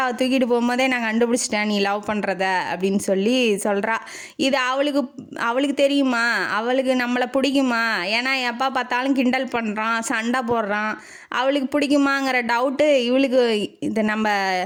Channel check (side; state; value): both; identical; correlation 1.00